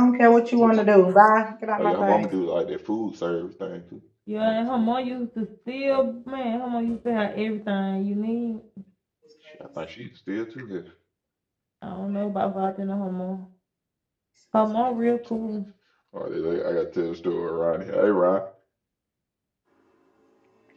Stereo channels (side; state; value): both; identical; correlation 1.00